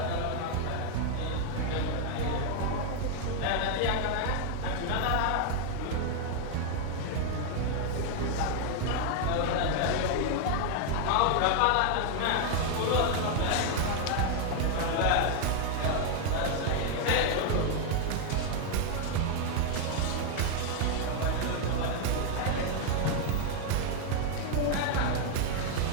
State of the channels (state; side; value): different; both; correlation 0.00